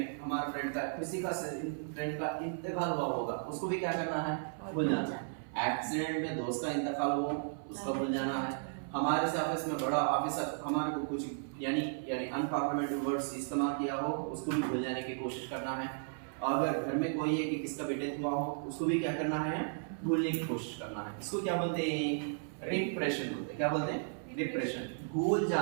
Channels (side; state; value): left; silent; 55 dB below the other